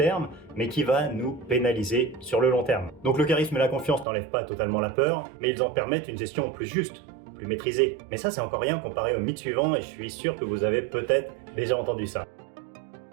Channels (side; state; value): left; drops out; at 4.0 s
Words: mais qui va nous pénaliser sur le long terme. Donc le charisme et la confiance n'enlèvent pas totalement la peur, mais ils en permettent une gestion plus juste, plus maîtrisée. Mais ça, c'est encore rien comparé au mythe suivant, et je suis sûr que vous avez peut-être déjà entendu ça.